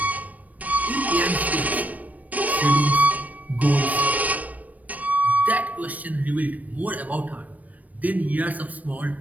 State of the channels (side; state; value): left; late; 0.073 ms